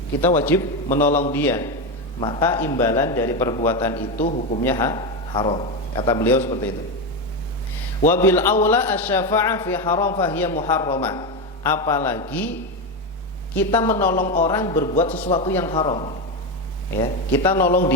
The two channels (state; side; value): normal; both; correlation 0.13